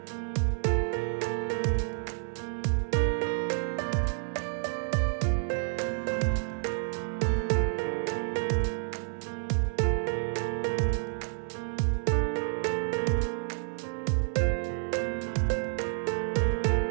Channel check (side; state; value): left; silent; 58 dB below the other